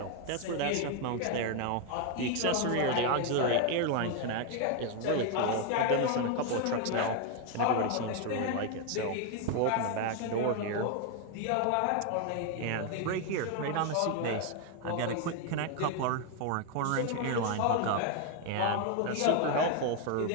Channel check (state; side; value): different; both; correlation 0.01